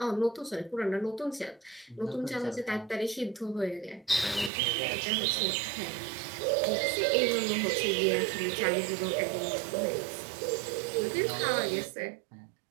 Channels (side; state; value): left; drops out; at 4.5 s